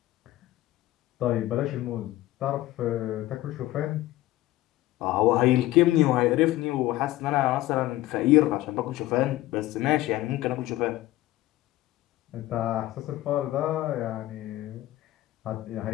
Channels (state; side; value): quieter; right; 16.2 dB